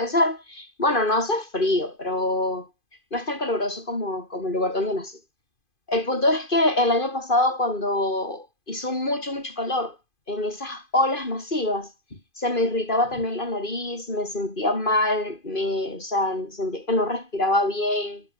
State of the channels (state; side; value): late; right; 2.5 ms